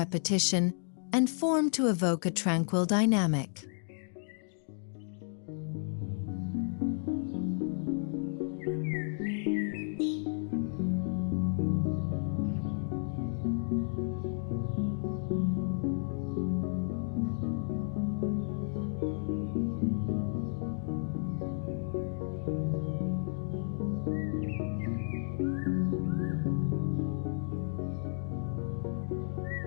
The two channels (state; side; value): silent; right; 56 dB below the other